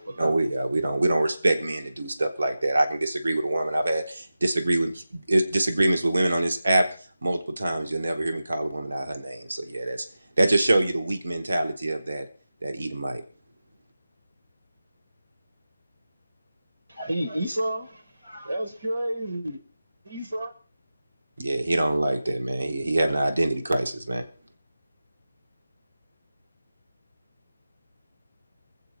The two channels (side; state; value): both; inverted; correlation -0.94